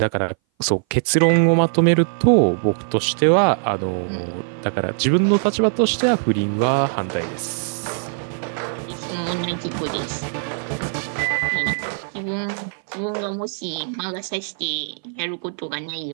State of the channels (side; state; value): left; silent; 59 dB below the other